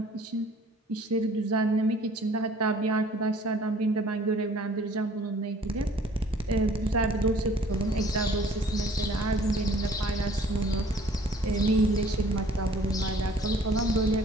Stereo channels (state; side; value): normal; both; correlation 0.54